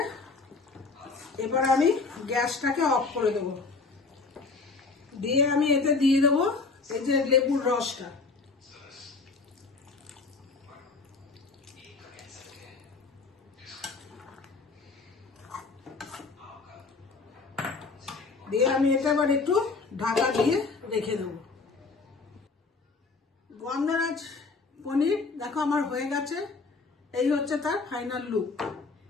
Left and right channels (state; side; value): quieter; right; 4.2 dB